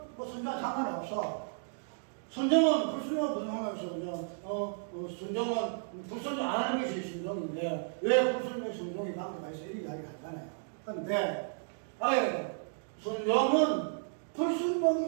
순종은 상관이 없어. 순종은 불순종은 무슨 상관없어. 순종은 불순종 안 하는 것이 순종인데 왜 불순종 순종이 관계가 있어 이렇게 이야기를 하잖아요. 그런데 순종은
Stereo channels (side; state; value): left; silent; digital silence